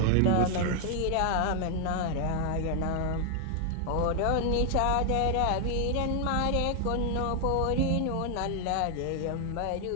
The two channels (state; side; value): different; both; correlation 0.00